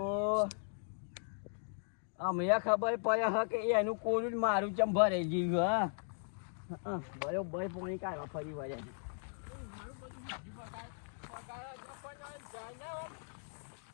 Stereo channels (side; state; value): right; silent; digital silence